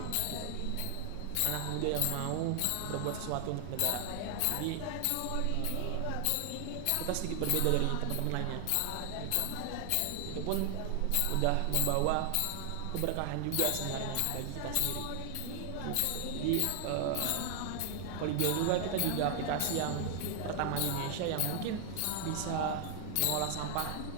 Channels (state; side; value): different; both; correlation 0.00